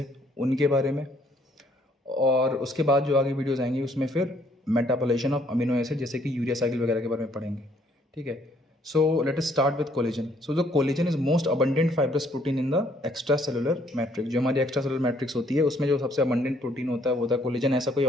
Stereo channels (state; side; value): normal; both; correlation 0.65